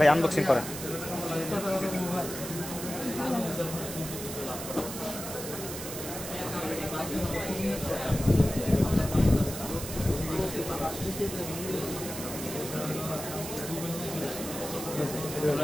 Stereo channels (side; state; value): right; noise; hiss, 8 dB below the sound